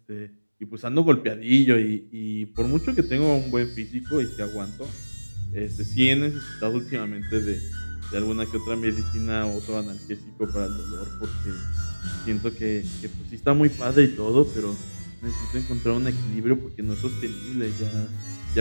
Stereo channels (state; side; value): inverted; both; correlation -1.00